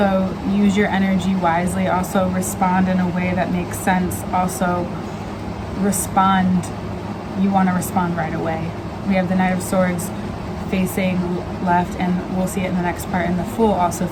use your energy wisely. Also respond in a way that makes sense. Also respond, you want to respond right away. We have the Knight of Swords facing left, and we'll see it in the next part, and the Fool also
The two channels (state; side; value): identical; both; correlation 1.00